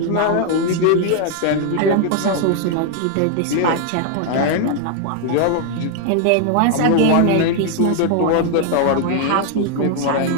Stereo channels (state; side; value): different; both; correlation 0.00